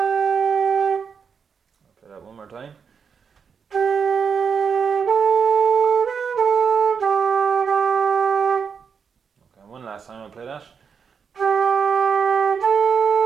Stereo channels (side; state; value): left; quieter; 6.3 dB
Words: play that one more time. Okay, one last time I'll play that.